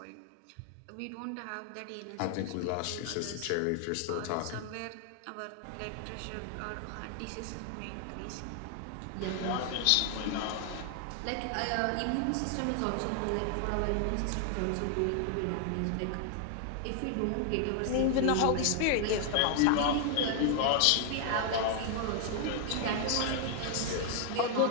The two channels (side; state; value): both; different; correlation 0.00